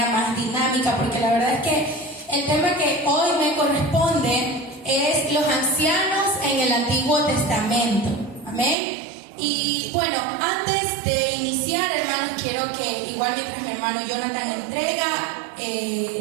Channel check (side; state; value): left; drops out; at 8.8 s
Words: más dinámica, porque la verdad es que el tema que hoy me corresponde es los ancianos en el Antiguo Testamento, amén. Y bueno, antes de iniciar, hermanos, quiero que igual mientras mi hermano Jonathan entrega